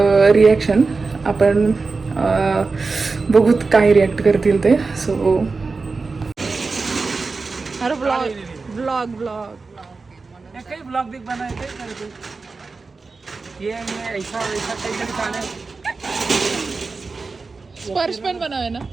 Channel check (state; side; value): quieter; left; 4.2 dB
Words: reaction. आपण बघूत काय रिॲक्ट करतील ते. सो अरे ब्लॉग कई ब्लॉग भी बनाए थे, ये ऐसा वैसा कई दिखाने. स्पर्श पण बनावे ना,